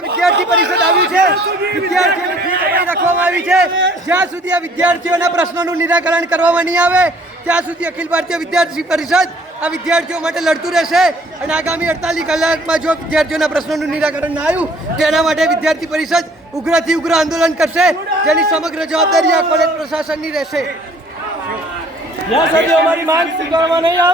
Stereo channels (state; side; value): normal; both; correlation 0.57